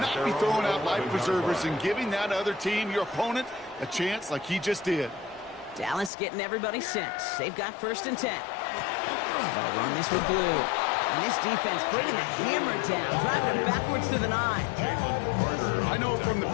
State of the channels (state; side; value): drops out; right; at 6.1 s